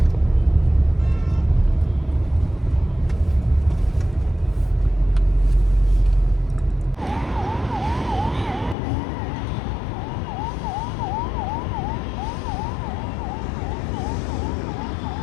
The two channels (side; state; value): right; drops out; at 8.8 s